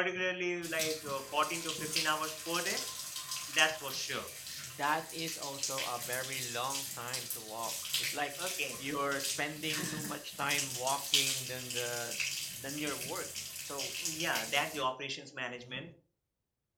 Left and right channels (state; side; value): identical; both; correlation 1.00